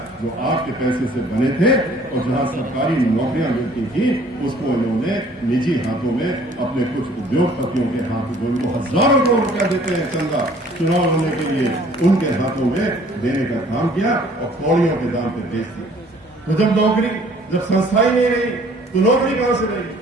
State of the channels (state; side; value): normal; both; correlation 0.55